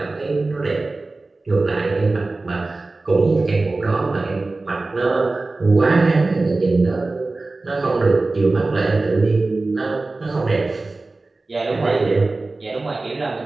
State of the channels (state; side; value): quieter; left; 3.3 dB